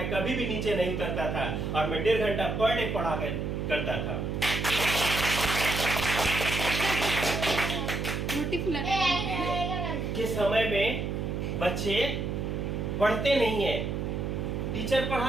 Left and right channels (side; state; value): right; noise; hum, 2 dB below the sound